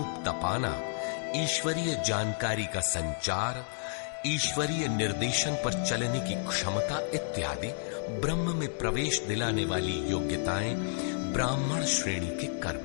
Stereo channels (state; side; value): silent; right; digital silence